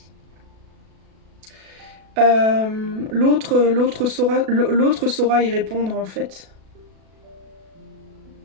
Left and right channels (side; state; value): left; late; 37 ms